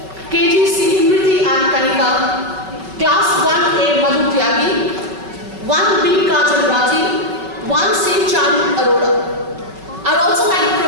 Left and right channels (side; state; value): left; late; 5.3 ms